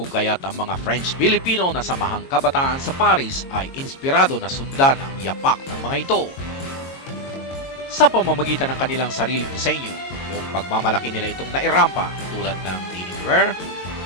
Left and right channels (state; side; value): late; right; 22 ms